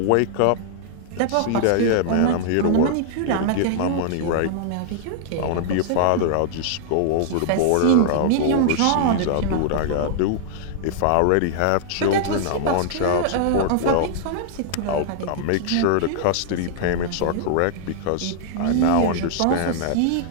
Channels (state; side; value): different; both; correlation -0.01